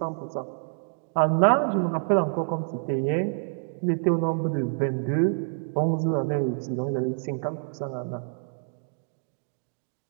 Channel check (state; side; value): silent; left; 60 dB below the other